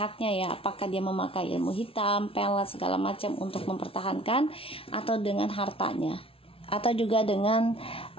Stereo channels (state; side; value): late; right; 0.26 ms